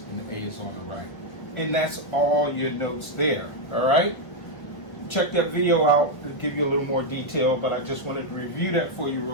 and A is on the right. And that's all your notes there, all right? Check that video out to give you a little more detail, but I just wanted to review that for you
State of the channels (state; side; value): late; right; 1.6 ms